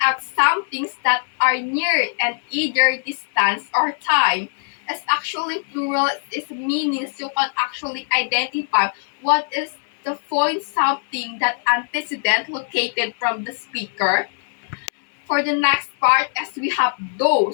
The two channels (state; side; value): silent; right; 65 dB below the other